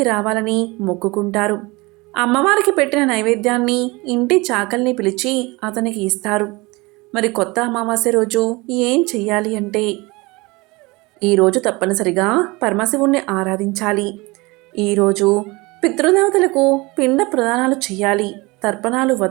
రావాలని మొక్కుకుంటారు. అమ్మవారికి పెట్టిన నైవేద్యాన్ని ఇంటి చాకల్ని పిలిచి అతనికి ఇస్తారు. మరి కొత్త అమావాస్య రోజు ఏం చెయ్యాలి అంటే, ఈరోజు తప్పనిసరిగా పరమశివుణ్ణి ఆరాధించాలి. ఈరోజు పితృదేవతలకు పిండ ప్రదానాలు చేయాలి, తర్పణాలు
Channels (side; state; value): left; quieter; 24.0 dB